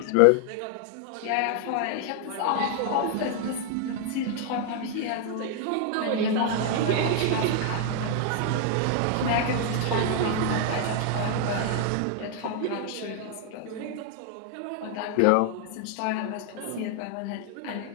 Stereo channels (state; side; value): different; both; correlation 0.00